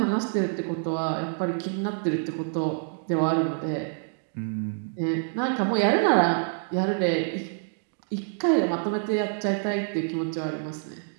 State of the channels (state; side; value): silent; left; digital silence